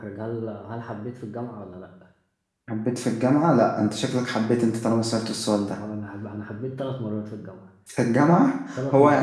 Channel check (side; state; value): both; identical; correlation 1.00